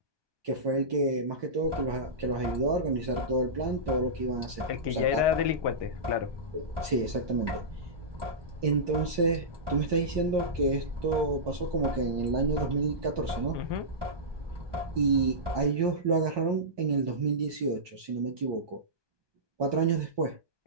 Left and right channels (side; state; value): left; late; 1.2 ms